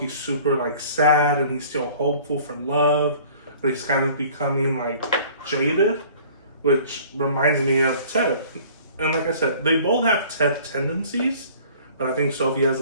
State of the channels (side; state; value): both; inverted; correlation -0.50